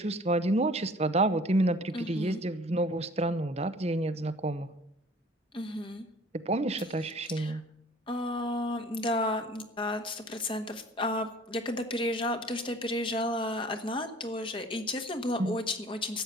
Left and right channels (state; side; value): normal; both; correlation 0.49